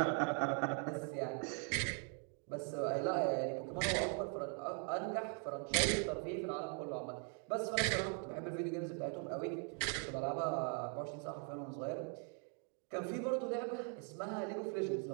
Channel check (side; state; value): left; quieter; 39.5 dB